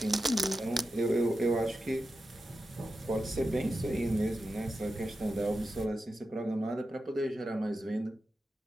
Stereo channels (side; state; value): both; normal; correlation 0.90